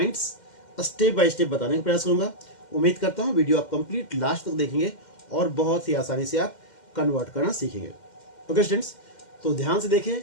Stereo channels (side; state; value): right; late; 2.1 ms